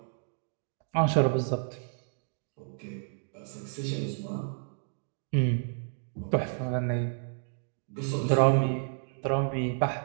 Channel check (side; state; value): left; silent; digital silence